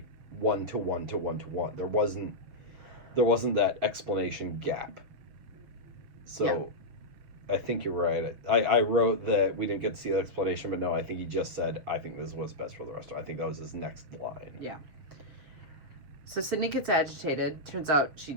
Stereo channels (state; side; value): late; left; 7.0 ms